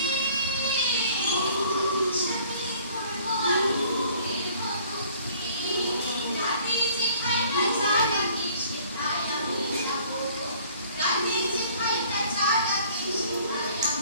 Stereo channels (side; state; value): both; inverted; correlation -0.55